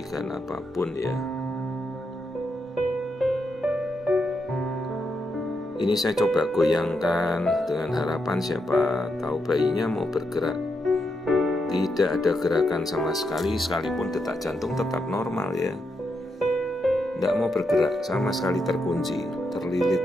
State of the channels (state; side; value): normal; both; correlation 0.83